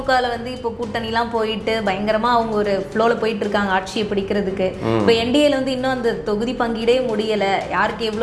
வந்து இப்போ கூட்டணிலாம் போயிட்டு பயங்கரமாக அவங்க ஒரு ஃப்ளோவில் போயிட்டு இருக்காங்க ஆட்சியை பிடிக்கிறதுக்கு. இப்போ என்டிஏல வந்து இன்னும் அந்த தொகுதி பங்கீடே முடியலை, யாருக்கு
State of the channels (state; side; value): identical; both; correlation 1.00